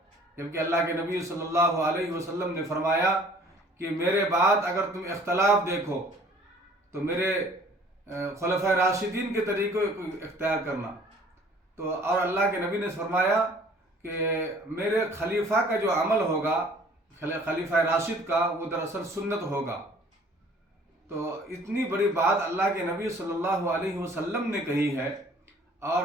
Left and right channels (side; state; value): both; normal; correlation 0.53